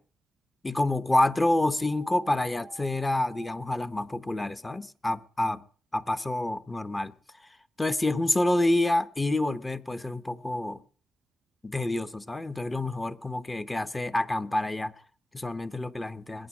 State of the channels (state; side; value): normal; both; correlation 0.96